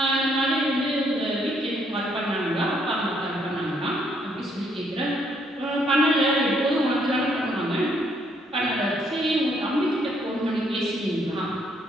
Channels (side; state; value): both; normal; correlation 0.70